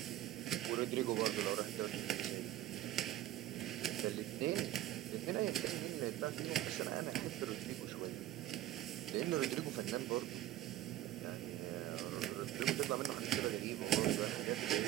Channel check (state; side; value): quieter; left; 13.9 dB